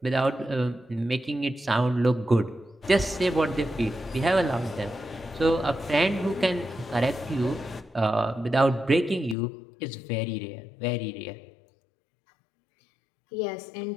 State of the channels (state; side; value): drops out; right; at 9.3 s